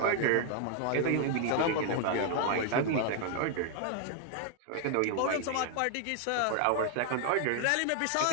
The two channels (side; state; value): both; different; correlation 0.00